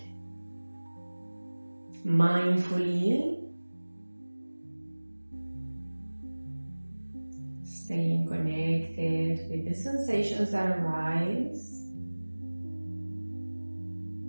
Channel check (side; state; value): both; inverted; correlation -1.00